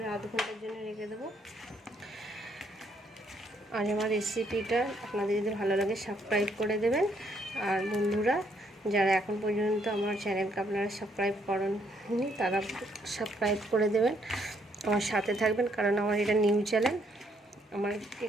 আধ ঘন্টার জন্য রেখে দেবো। আর আমার রেসিপিটা আপনাদের যদি ভালো লাগে সাবস্ক্রাইব করে দেবেন। আর বন্ধুরা, যারা এখন পর্যন্ত আমার চ্যানেলকে আপনারা সাবস্ক্রাইব করেননি তারা সাবস্ক্রাইব করে দেবেন, আমার সাথে থাকবেন, কারণ আমার এটা নিউ চ্যানেল। আমার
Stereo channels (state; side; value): normal; both; correlation 0.71